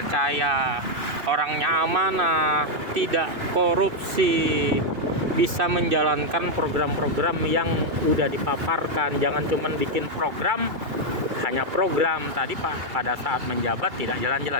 orangnya amanah, tidak korupsi, bisa menjalankan program-program yang udah dipaparkan. Jangan cuma bikin program, hanya program tadi Pak pada saat menjabat tidak jalan-jalan,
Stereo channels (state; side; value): late; left; 2.4 ms